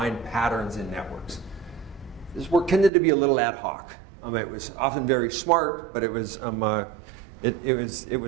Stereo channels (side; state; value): left; drops out; at 2.9 s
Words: patterns in networks. This work tended to be a little ad hoc. It was often very smart, but it was